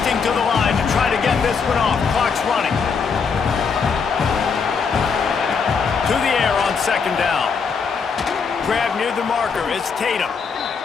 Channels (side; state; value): right; quieter; 5.7 dB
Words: to the line to try to get this one off. Clock's running. To the air on second down. Grab near the marker. It's Tatum.